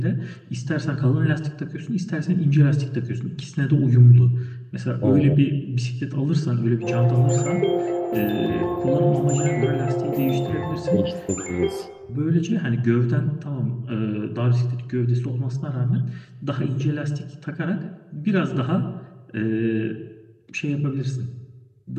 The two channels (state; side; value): identical; both; correlation 1.00